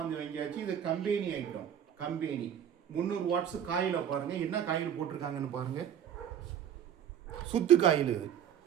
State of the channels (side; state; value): left; quieter; 9.4 dB